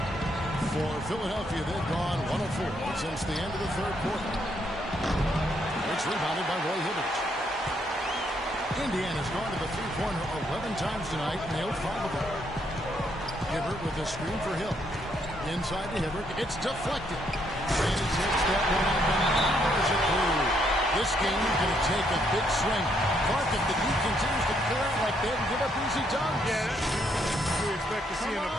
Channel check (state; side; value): normal; both; correlation 0.73